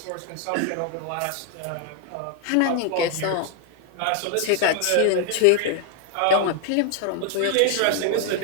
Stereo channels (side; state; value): both; different; correlation 0.00